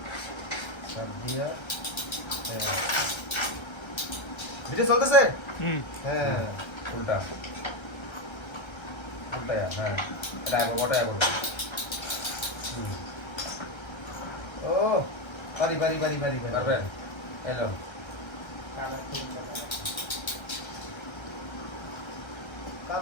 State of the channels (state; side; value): late; right; 1.3 ms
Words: সব দিয়া ভিডিও চলতেছে হ্যাঁ উল্টা উল্টা হ্যাঁ এটা আগে বটা আগে ও পারি পারি পারি পারি পারবে এলো